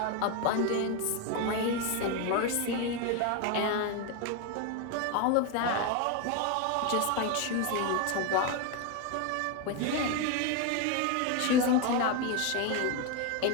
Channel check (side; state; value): both; different; correlation 0.02